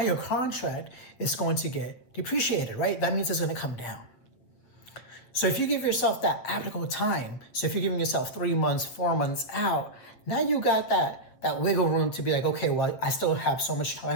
contract is going to get depreciated, right? That means it's going to come down. So if you give yourself that ample time, so if you're giving yourself 3 months, 4 months out, now you got that wiggle room to be like, okay, well, I still have so much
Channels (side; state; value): right; late; 8.2 ms